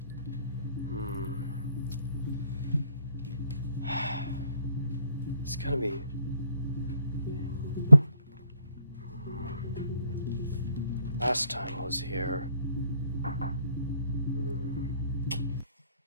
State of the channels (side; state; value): both; inverted; correlation -0.67